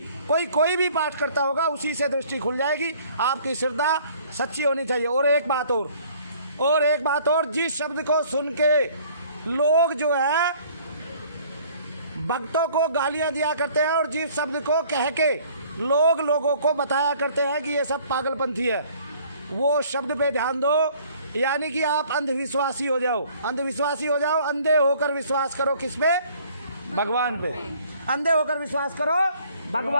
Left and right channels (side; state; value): both; inverted; correlation -0.56